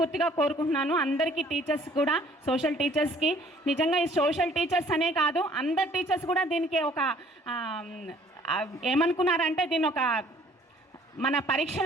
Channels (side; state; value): both; normal; correlation 0.57